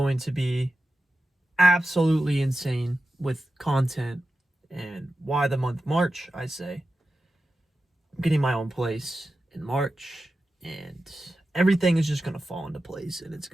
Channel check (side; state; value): both; normal; correlation 0.92